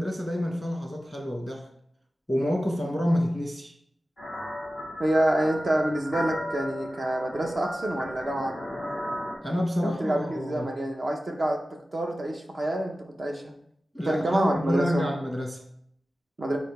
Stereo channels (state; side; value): normal; both; correlation 0.95